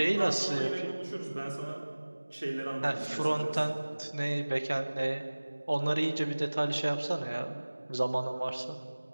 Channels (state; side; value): inverted; both; correlation -1.00